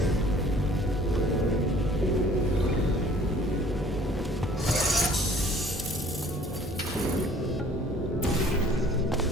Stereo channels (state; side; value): normal; both; correlation 0.54